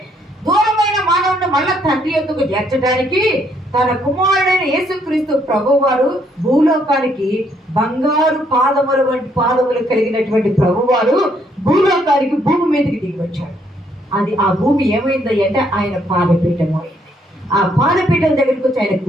దూరమైన మానవుడిని మళ్ళా తండ్రి యొద్దకు చేర్చడానికి తన కుమారుడైన యేసుక్రీస్తు ప్రభువారు భూలోకానికి, బంగారు పాదముల వంటి పాదములు కలిగినటువంటి ప్రభువారు భూలోకానికి, భూమి మీదకి దిగి వచ్చాడు. ఆ భూమి ఏమైంది అంటే ఆయన పాదపీఠం అయింది. ఆ పాదపీఠం దగ్గరికి వచ్చి ఆయన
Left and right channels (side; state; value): both; normal; correlation 0.70